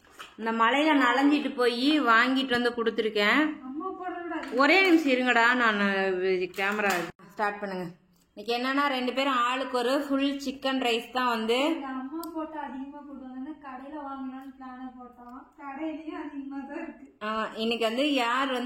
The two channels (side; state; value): both; identical; correlation 1.00